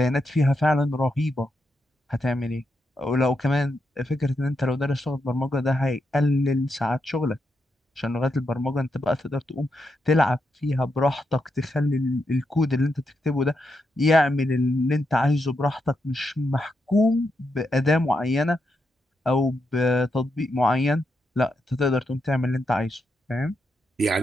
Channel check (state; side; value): normal; both; correlation 0.84